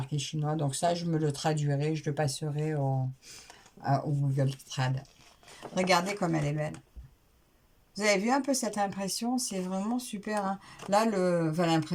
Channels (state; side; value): identical; both; correlation 1.00